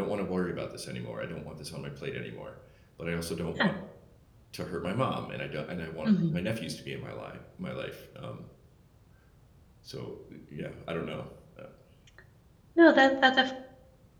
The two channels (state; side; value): identical; both; correlation 1.00